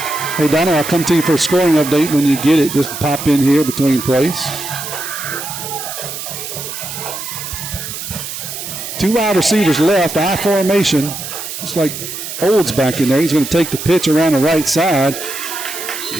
Hey, Donna, I'll come to you for a scoring update when you get it. Just pop in here between plays. 2 wide receivers left, I formation. Just like Olds back in there. He's going to take the pitch around the right side.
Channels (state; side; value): noise; right; hiss, 8 dB below the sound